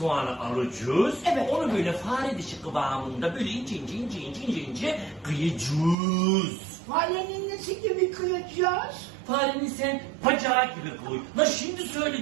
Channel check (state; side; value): drops out; left; at 6.0 s